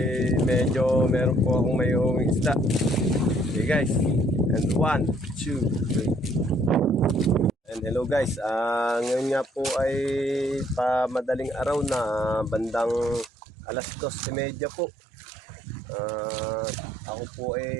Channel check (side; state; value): left; drops out; at 13.3 s